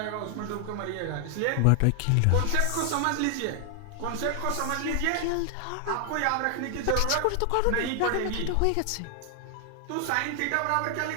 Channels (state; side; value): different; both; correlation 0.00